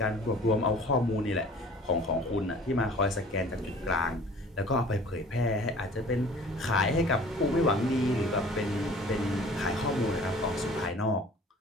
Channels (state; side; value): normal; both; correlation 0.48